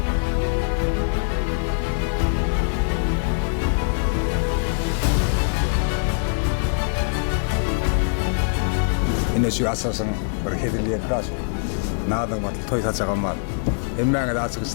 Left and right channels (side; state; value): right; silent; 64 dB below the other